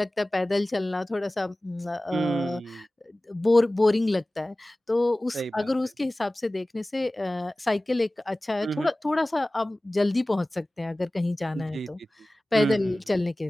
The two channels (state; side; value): normal; both; correlation 0.98